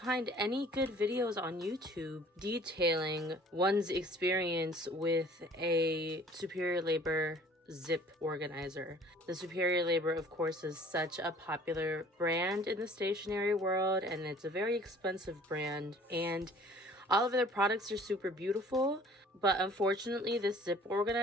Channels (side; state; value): both; normal; correlation 0.51